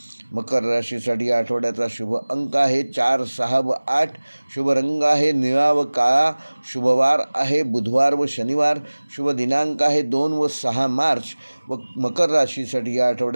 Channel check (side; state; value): both; inverted; correlation -1.00